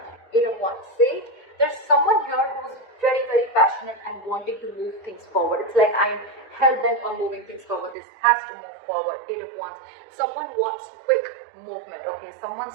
Eight of Wands. See, there's someone here who's very, very passionate and wanting to move things forward. It's like I'm hell-bent on moving things forward. This has to move forward. Eight of Wands. Someone wants quick movement, okay?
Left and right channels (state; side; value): drops out; left; at 8.0 s